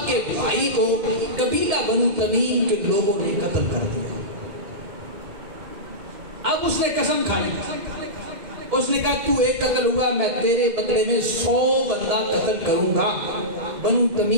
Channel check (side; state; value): left; late; 2.7 ms